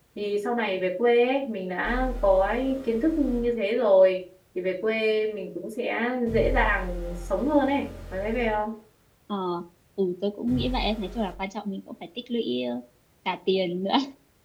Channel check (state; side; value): identical; both; correlation 1.00